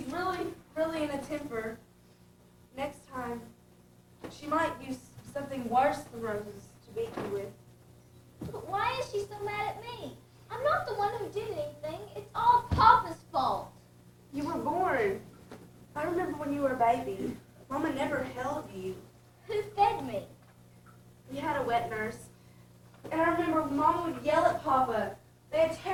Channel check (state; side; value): identical; both; correlation 1.00